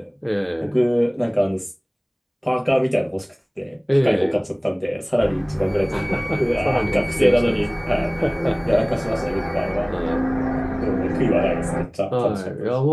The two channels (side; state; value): both; identical; correlation 1.00